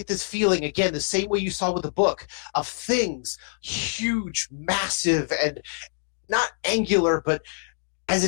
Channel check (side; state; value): right; silent; 61 dB below the other